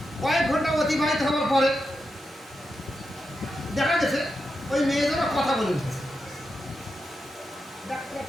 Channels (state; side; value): normal; both; correlation 0.87